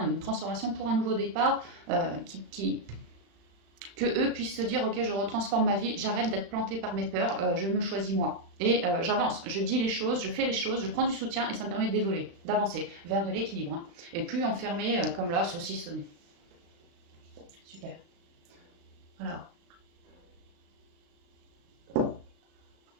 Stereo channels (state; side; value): late; left; 35 ms